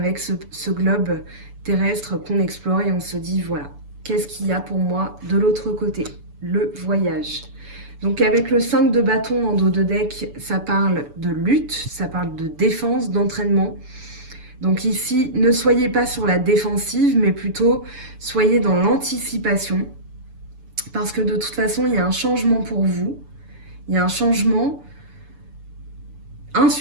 ce globe terrestre qu'on explore et on se dit voilà, qu'est-ce qu'il y a pour moi de l'autre côté? Le voyage. Donc avec le 5 de bâton en dos de deck, ça parle de lutte, ça parle de défense, d'entraînement. Donc ici, ne soyez pas sur la défensive, mais plutôt soyez dans l'anticipation. Parce que de toute façon, il y a un changement pour vous. Il y a un changement, un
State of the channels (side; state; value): left; late; 7.0 ms